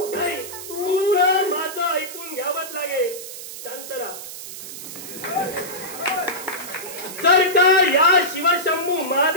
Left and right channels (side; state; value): right; noise; hiss, 11 dB below the sound